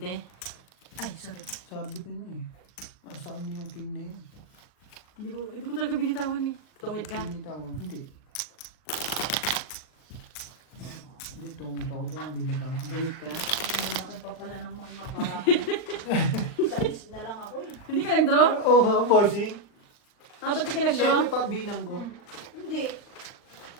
Ay, sorry. Sabi ko na eh. Nasa kanya yung king na yun. Hindi ko talaga binitawan eh. Tungit ka. Binitawan. Hindi. Hindi, tumit ako doon. Binitawan. Tungit ka. Malaki pa pala ng mga parahan. Sa na lang ako eh. Hindi ka nag-draw? Oo, oh, bossing. Dapat di ka nag-draw? Siyempre pa bilang ko. Hindi.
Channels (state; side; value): late; right; 39 ms